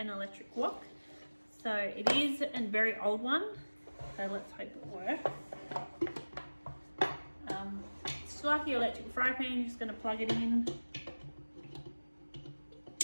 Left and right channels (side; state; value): both; inverted; correlation -1.00